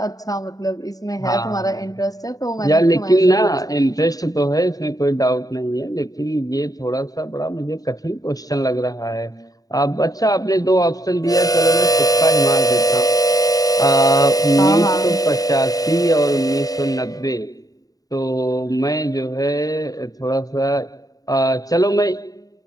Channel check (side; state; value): right; late; 0.18 ms